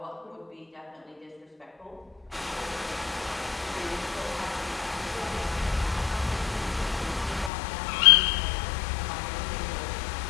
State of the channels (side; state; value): right; drops out; at 7.5 s